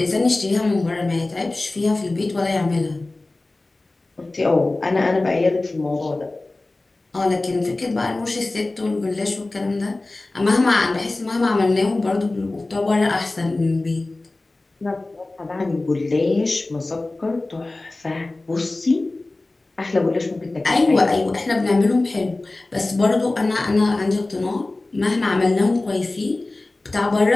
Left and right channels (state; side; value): quieter; right; 3.0 dB